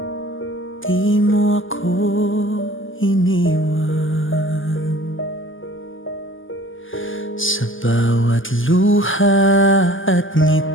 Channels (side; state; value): right; late; 0.58 ms